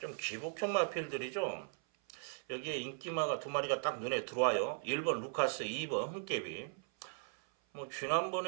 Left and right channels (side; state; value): left; silent; 52 dB below the other